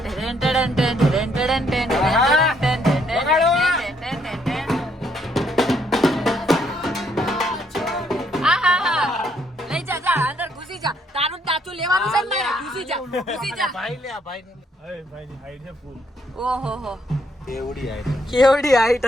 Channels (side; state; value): both; normal; correlation 0.70